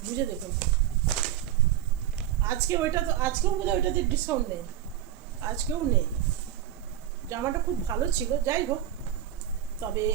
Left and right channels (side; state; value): left; quieter; 11.5 dB